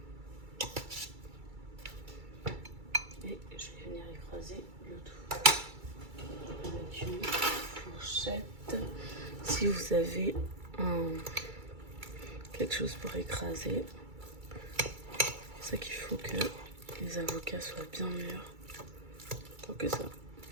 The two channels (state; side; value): late; left; 2.3 ms